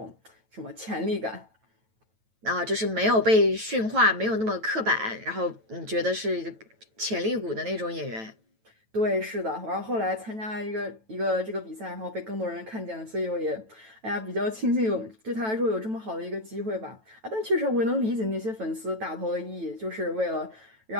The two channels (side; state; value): left; late; 9.1 ms